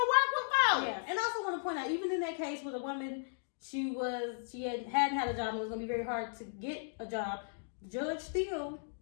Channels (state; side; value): silent; right; digital silence